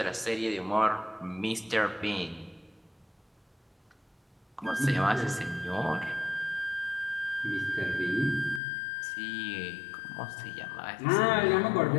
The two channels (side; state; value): right; drops out; at 8.6 s